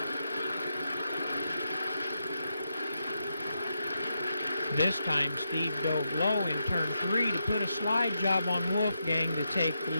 This time, Steve dove low in turn 3 to put a slide job on Wolfgang to take the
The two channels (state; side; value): inverted; both; correlation -0.84